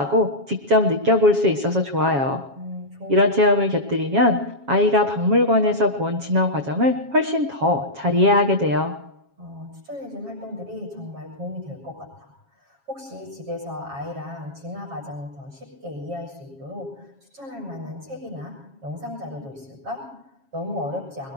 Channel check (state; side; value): late; left; 7.3 ms